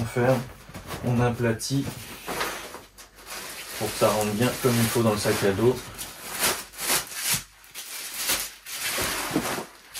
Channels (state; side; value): identical; both; correlation 1.00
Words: ferme, on aplatit pour que ça rentre bien comme il faut dans le sac à dos.